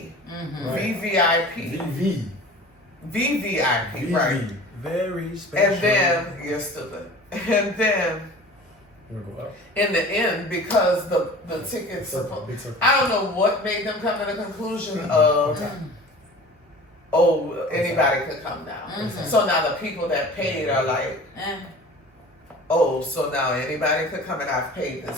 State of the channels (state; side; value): normal; both; correlation 0.41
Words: VVIP. VVIP, right? Very special. And then, you're stupid. And then, in the end, because the tickets, I don't know what made them come to the conclusion of, oh, anybody could come now. So now the people that paid are like, oh, so now anybody could come and I've paid